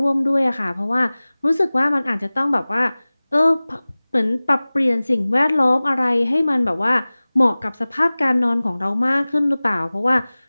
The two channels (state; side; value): inverted; both; correlation -0.99